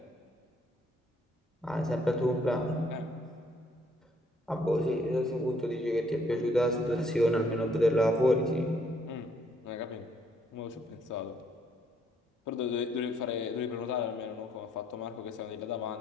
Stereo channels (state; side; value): normal; both; correlation 0.67